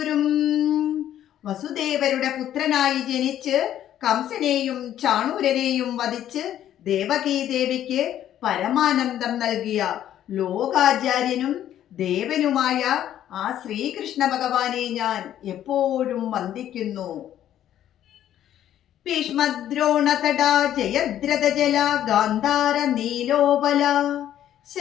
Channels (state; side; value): quieter; right; 11.4 dB